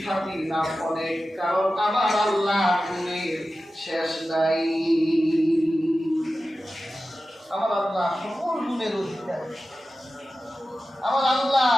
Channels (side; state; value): both; normal; correlation 0.94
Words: নাম অনেক, কারণ আমার আল্লাহ গুণের শেষ নাই। আমার আল্লাহ সকল গুণের অধিকারী। আমার আল্লাহ